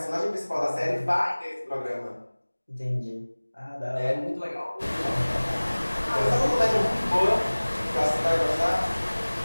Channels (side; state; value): both; inverted; correlation -1.00